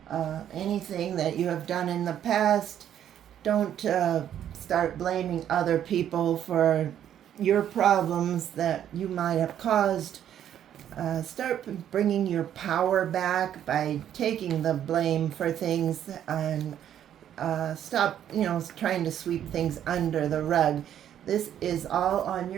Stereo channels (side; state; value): left; quieter; 10.3 dB